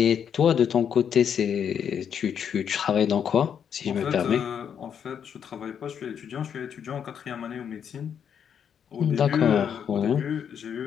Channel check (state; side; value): quieter; right; 8.1 dB